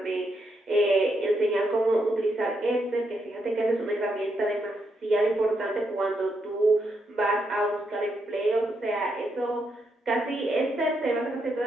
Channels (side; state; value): both; normal; correlation 0.80